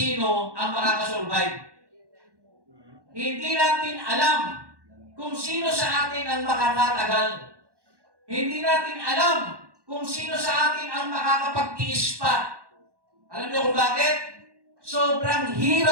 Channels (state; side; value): late; left; 1.1 ms